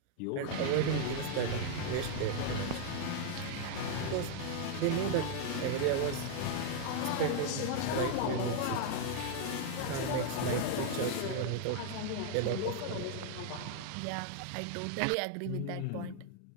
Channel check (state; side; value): different; both; correlation 0.00